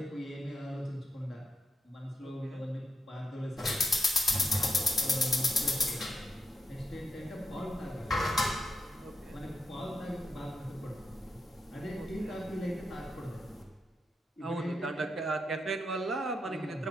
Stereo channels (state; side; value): normal; both; correlation 0.83